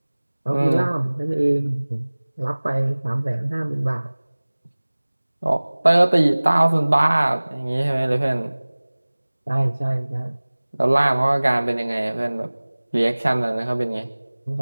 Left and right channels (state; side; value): inverted; both; correlation -1.00